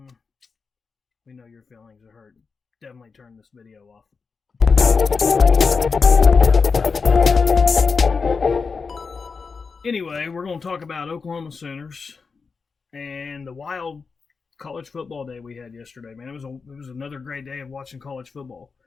we know your feelings are hurt. Definitely turn this video off. Anyway, we're going to talk about Oklahoma Sooners and the wild college football day we had yesterday. Man, it was another great day of watching college football.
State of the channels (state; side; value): quieter; right; 5.0 dB